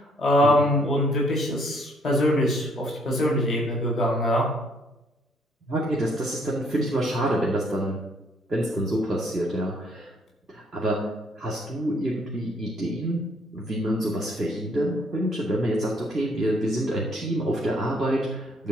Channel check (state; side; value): normal; both; correlation 0.66